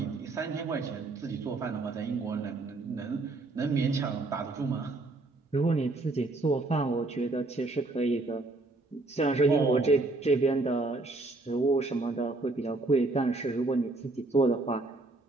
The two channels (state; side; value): quieter; left; 3.2 dB